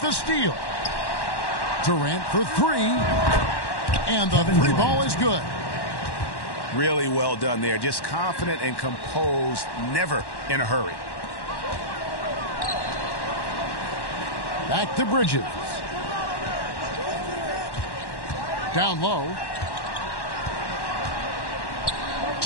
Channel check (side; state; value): right; late; 1.1 ms